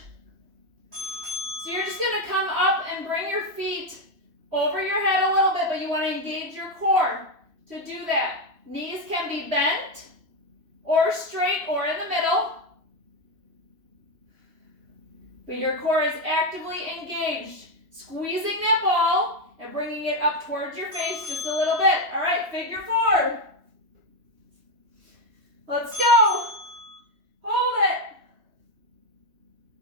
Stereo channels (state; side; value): late; left; 3.1 ms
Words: So you're just going to come up and bring your feet over your head a little bit, but you want to engage your core to do that. Knees can be bent or straight or in the middle, but your core is actively engaged, squeezing that ball and bringing it up towards your face just a little bit. All right, figure 4. Let's go. Hold it.